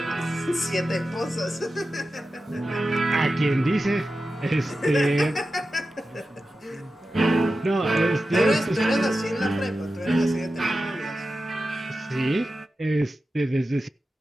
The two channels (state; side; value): normal; both; correlation 0.92